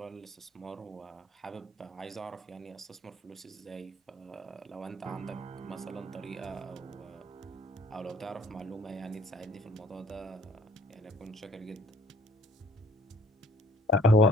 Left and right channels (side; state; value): both; normal; correlation 0.57